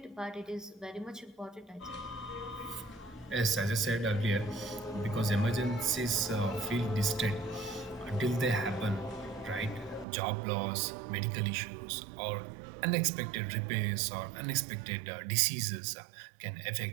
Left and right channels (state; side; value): drops out; left; at 10.1 s